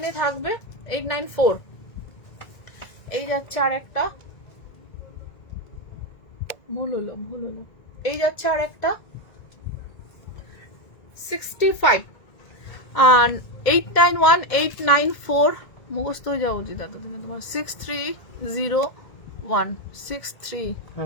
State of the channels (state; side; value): late; right; 1.8 ms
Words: থাকবে। 894। এই যাচ্ছে আরেকটা, ভুল হলো। এই যাচ্ছে আরেকটা 65 আর 891, 894 মুখস্থ হয়ে যাওয়া উচিত দাদা তোমার। 6301,